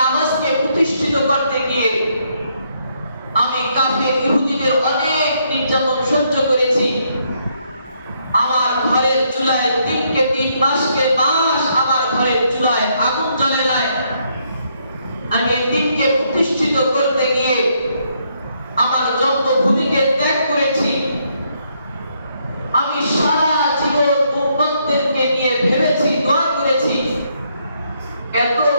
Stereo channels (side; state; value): both; inverted; correlation -0.73